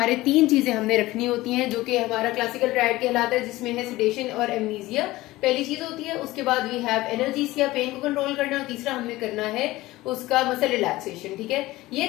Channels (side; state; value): right; quieter; 18.3 dB